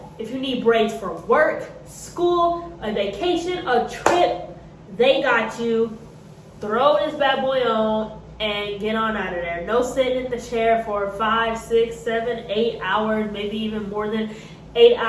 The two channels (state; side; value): identical; both; correlation 1.00